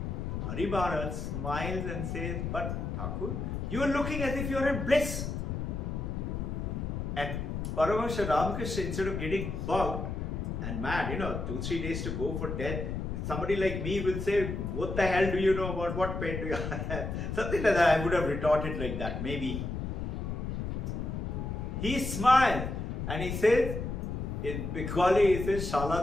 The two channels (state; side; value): noise; left; rumble, 3 dB below the sound